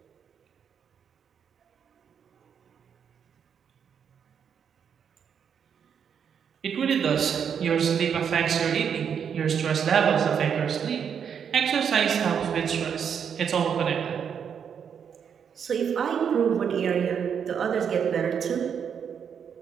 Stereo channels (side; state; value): left; quieter; 7.5 dB